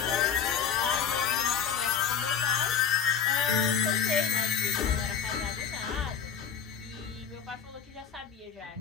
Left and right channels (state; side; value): quieter; right; 7.4 dB